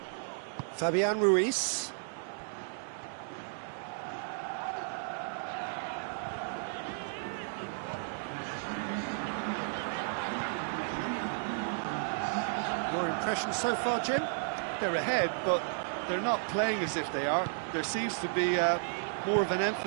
Fabian Ruiz. Your impression so far, Jim? They're ahead, but they're not playing as if they are. There seems to be more of an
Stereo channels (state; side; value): silent; left; digital silence